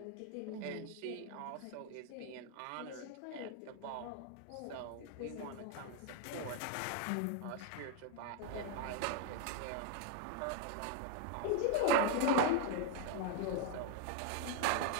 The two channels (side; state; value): both; different; correlation 0.01